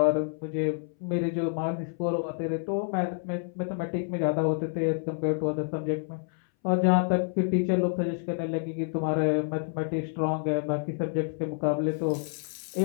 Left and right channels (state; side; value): silent; right; 59 dB below the other